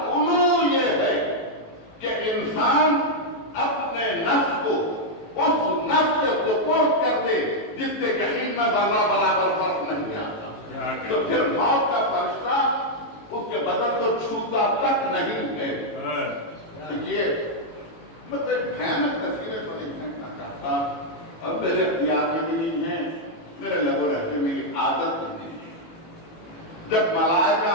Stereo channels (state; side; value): late; right; 18 ms